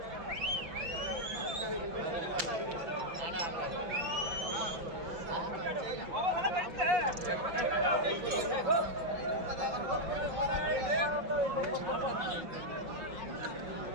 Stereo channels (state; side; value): late; left; 5.6 ms